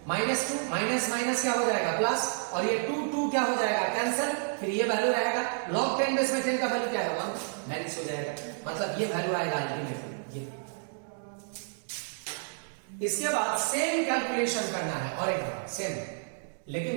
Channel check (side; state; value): left; silent; digital silence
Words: माइनस 2 माइनस माइनस क्या हो जाएगा? प्लस, और ये 2 क्या हो जाएगा? कैंसिल। फिर ये वैल्यू रहेगा log 10 बेस में 10 का वैल्यू क्या है? 1 माइनस हो जाएगा, मतलब ये वैल्यू आएगा अल्टीमेटली ये। इसके बाद सेम कैलकुलेशन करना है और एक बार सेम,